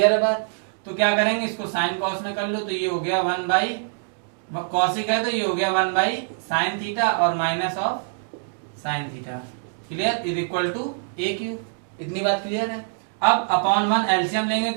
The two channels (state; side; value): silent; left; digital silence